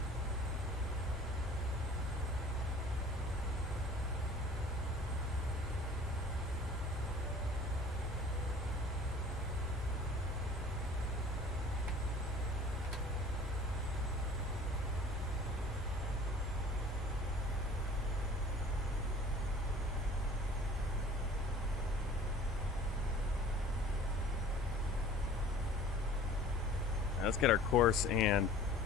Let's get our course and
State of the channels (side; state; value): both; normal; correlation 0.46